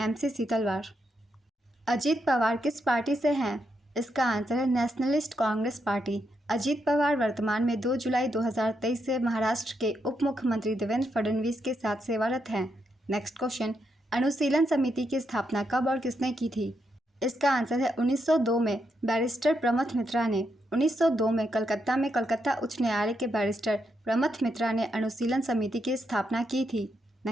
सीतलवार। अजीत पवार किस पार्टी से हैं? इसका आंसर है नेशनलिस्ट कांग्रेस पार्टी। अजीत पवार वर्तमान में 2 जुलाई 2023 से महाराष्ट्र के उप मुख्यमंत्री देवेंद्र फडणवीस के साथ सेवारत हैं। नेक्स्ट क्वेश्चन, अनुशीलन समिति की स्थापना कब और किसने की थी? इसका आंसर है 1902 में बैरिस्टर प्रमथ मित्रा ने। 1902 में कलकत्ता उच्च न्यायालय के बैरिस्टर प्रमथ मित्रा ने अनुशीलन समिति की स्थापना की थी।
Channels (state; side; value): normal; both; correlation 0.81